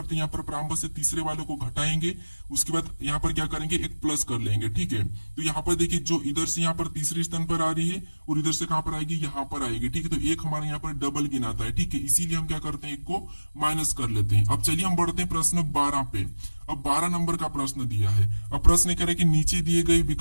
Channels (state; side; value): inverted; both; correlation -1.00